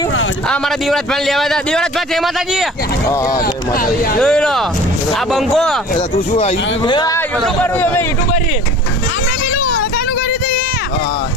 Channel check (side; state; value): both; normal; correlation 0.43